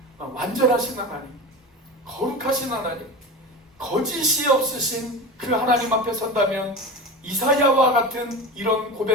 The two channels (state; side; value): normal; both; correlation 0.28